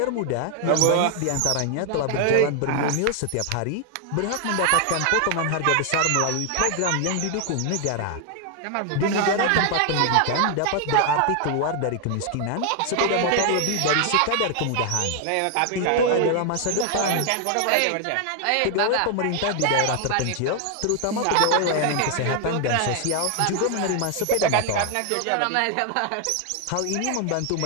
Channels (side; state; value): both; different; correlation 0.00